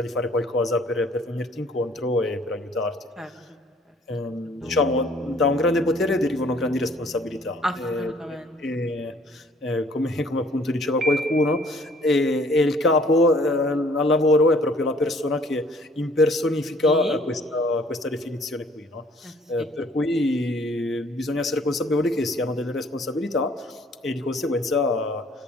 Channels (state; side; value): normal; both; correlation 0.58